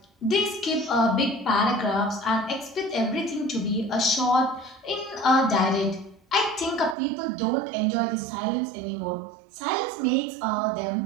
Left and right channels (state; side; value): drops out; left; at 7.0 s